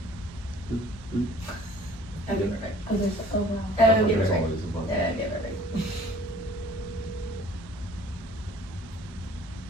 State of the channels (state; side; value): normal; both; correlation 0.52